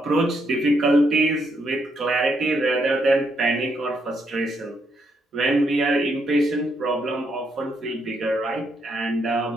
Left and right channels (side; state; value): both; normal; correlation 0.76